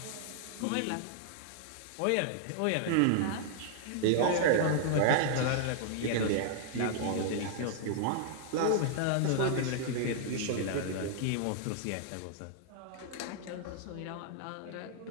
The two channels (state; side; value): different; both; correlation -0.01